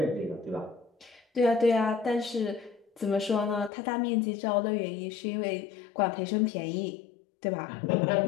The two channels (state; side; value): drops out; right; at 3.7 s